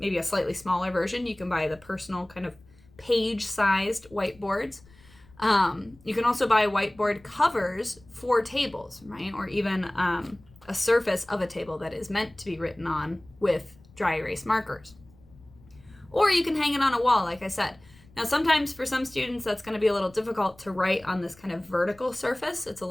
a slightly smaller version. You can buy the personal kind of page-sized whiteboards. You can also buy whiteboard covers for tables, right? Or even a surface of a table that is meant to be written on with dry erase markers. Or you can hang it on a wall, like I said. Now, sometimes for some students, that's going to be a little difficult to write on this kind of vertical surface. It's a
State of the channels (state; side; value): noise; left; rumble, 26 dB below the sound